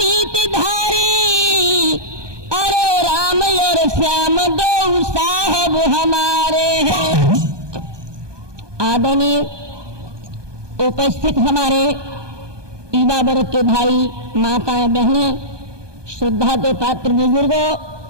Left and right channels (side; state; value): left; late; 1.2 ms